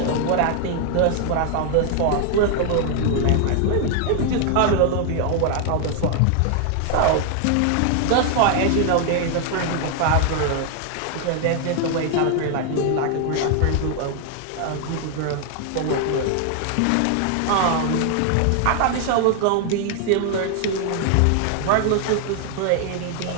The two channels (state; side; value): different; both; correlation 0.00